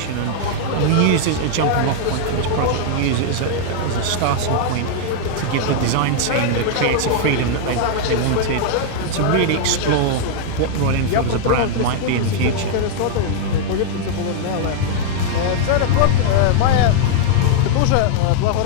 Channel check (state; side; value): different; both; correlation -0.01